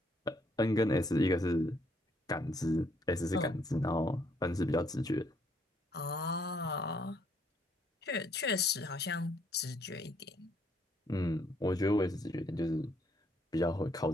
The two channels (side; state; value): both; normal; correlation 0.68